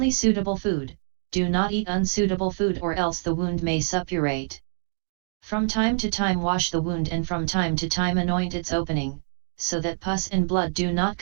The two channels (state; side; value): silent; left; digital silence